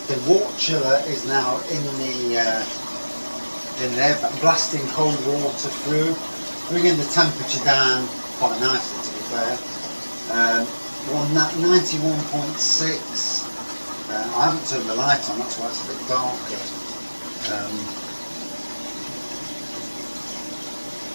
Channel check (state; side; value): inverted; both; correlation -1.00